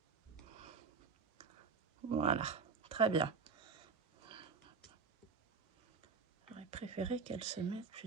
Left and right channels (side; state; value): left; quieter; 5.2 dB